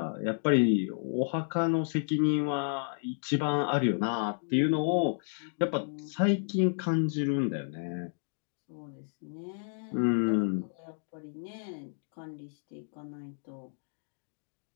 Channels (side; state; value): right; silent; digital silence